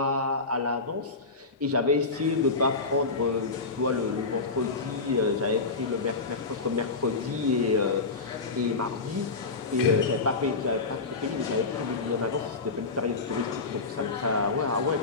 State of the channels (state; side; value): quieter; right; 3.9 dB